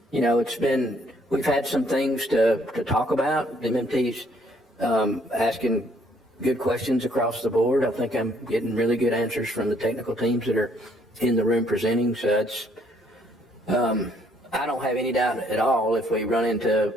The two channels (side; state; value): both; normal; correlation 0.65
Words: we've had some things to talk about. The MMT's asking good questions across the board. I think I'm getting really good answers from the technical teams that are in the room presenting. So I don't have any doubt at all if we run